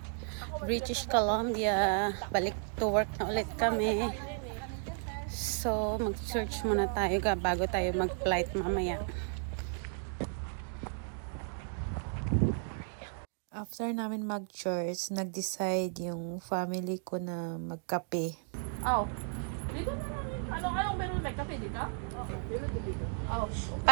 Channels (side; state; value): left; silent; 55 dB below the other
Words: British Columbia. Balik to work na ulit kami. So, mag-church muna tayo bago tayo mag-flight mamaya. After namin mag-church, nag-decide yung family ko na magkape. Oh. Dito na lang yun. Anong meron may kape dito? Oo. Meron dito. Oh.